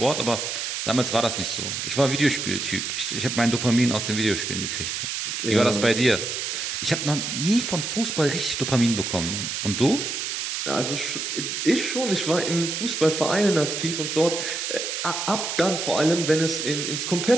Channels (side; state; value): right; noise; hiss, 3 dB below the sound